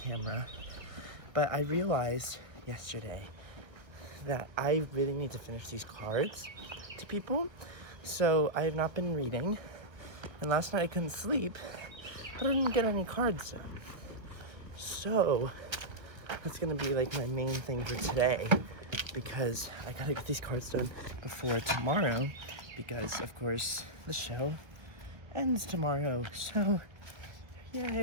But I realized yesterday that I really need to finish these cards to people. So I have not been reading. And last night I couldn't sleep, but I didn't get any cards done. So that's gonna be like my main thing for today, because I gotta get these cards done before tomorrow, because of course the show ends tomorrow. So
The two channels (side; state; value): left; late; 1.5 ms